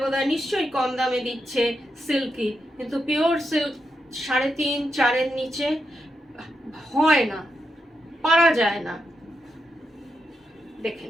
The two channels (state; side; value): normal; both; correlation 0.85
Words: বোধহয় নিশ্চয়ই কম দামে দিচ্ছে সিল্কি, কিন্তু পিওর সিল্ক 3.5-4 নিচে হয় না, পারা যায় না। দেখে